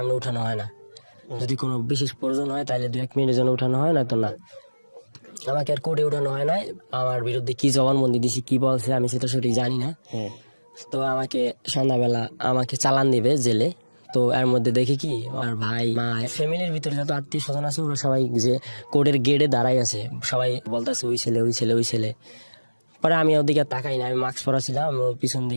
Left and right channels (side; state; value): both; inverted; correlation -1.00